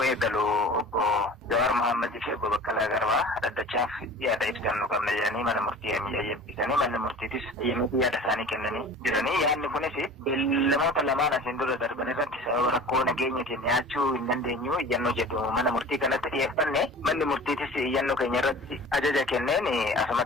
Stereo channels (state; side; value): normal; both; correlation 0.40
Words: eegalu obbo Jawaar Mohammadii fi obbo Baqqalaa Garbaa addachaaf yaada ibsannuu qabna jedhanii mana murtii eeyyamsiisanii manni murtiitis eeyyamanii yaada isaanii kennanii jiranii. Yaadni kunis beellamoota lamaan asiin dura darban irratti sababa rakkoo nageenyatiin dhiyaachuu hin dandeenyu iyyannoo jedhu mana murtii kanatti dhiyeeffanne manni murtiitis iyyannoo keenya irratti ajaja kenneen